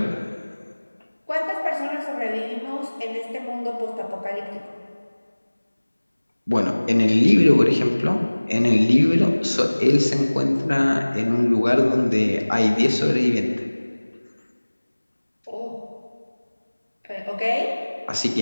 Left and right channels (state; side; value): inverted; both; correlation -1.00